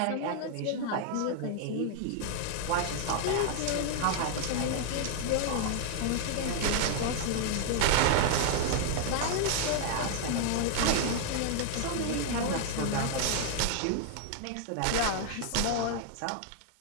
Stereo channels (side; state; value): both; different; correlation 0.00